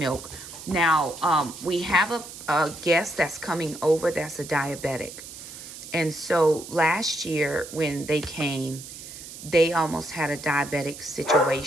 Now, we have a guest that's coming over that's a diabetic. And so last year when they came, they almost had a diabetic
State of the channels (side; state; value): right; noise; hiss, 13 dB below the sound